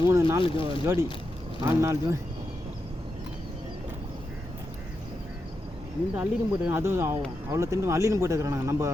நாள் ஜோடி 4 நாள் ஜோடி இந்த அள்ளின்னு போட்டுருக்கான். அதுவும் அவ்வளோ திண்டு அள்ளின்னு போட்டுக்கிறான். நம்ம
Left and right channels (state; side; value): normal; both; correlation 0.87